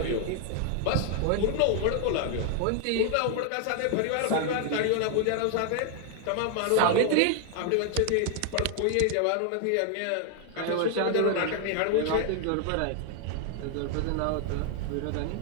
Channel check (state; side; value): different; both; correlation 0.00